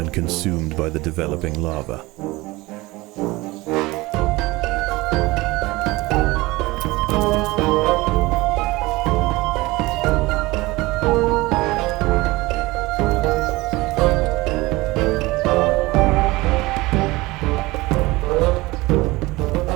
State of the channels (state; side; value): quieter; left; 21.0 dB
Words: consumed by the developing larva.